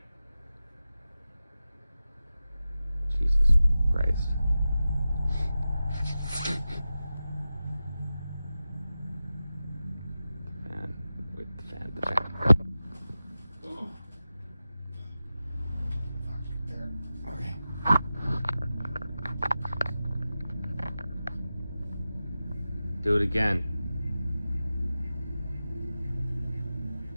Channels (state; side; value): inverted; both; correlation -0.93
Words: Jesus Christ. Fan. Wait, the fan. Okay. Do it again.